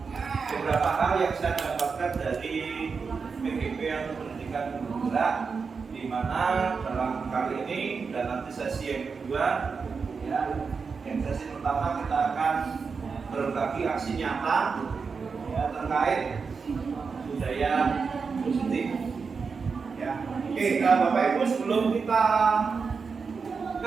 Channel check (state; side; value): quieter; left; 5.2 dB